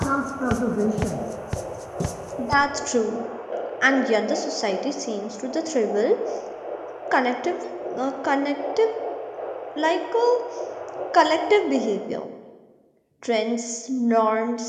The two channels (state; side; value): identical; both; correlation 1.00